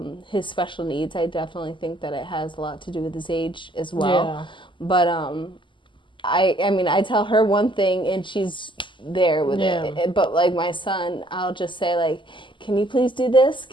his special needs. I definitely think that it has a lot to do with his age as well. But I mean, I tell her one thing and she's there with it. But like my son, I'll just say like, can you please do this?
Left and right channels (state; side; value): late; right; 0.24 ms